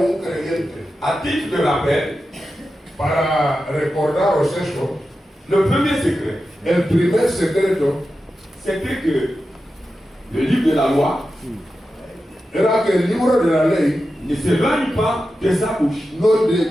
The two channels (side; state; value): both; normal; correlation 0.91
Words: creyente. À titre de rappel, Para recordaros eso, le premier secret, el primer secreto c'était que le livre de la loi era que el libro de la ley ne s'éloigne pas de sa bouche. no